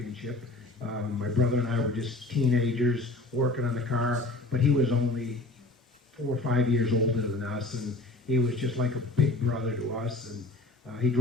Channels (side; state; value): right; quieter; 3.1 dB